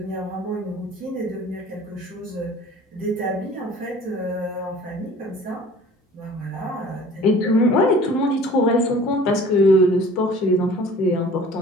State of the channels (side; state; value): both; normal; correlation 0.47